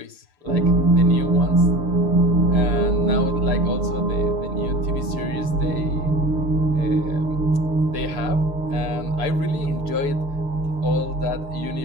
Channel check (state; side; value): late; left; 6.8 ms